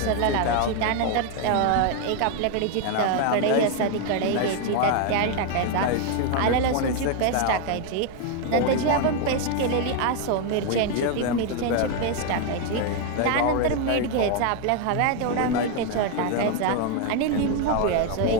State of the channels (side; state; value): both; different; correlation 0.01